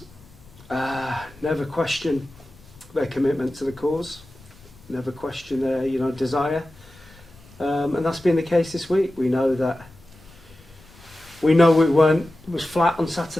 Never question their commitment to the cause. Never question their, desire. And that's been the case this week. We know it was flat on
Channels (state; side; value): noise; left; rumble, 24 dB below the sound